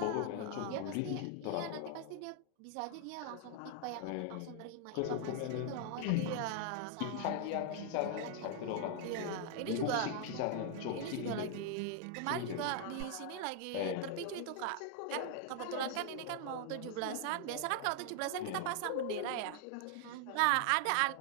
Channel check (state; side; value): different; both; correlation 0.00